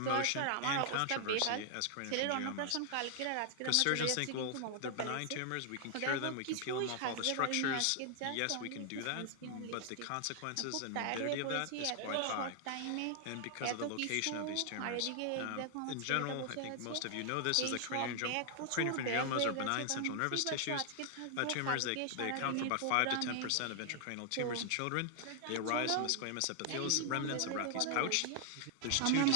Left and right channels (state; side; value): different; both; correlation 0.00